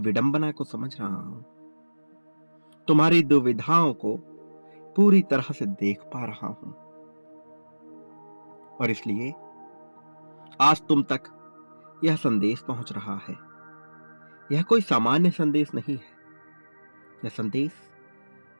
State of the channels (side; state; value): both; inverted; correlation -1.00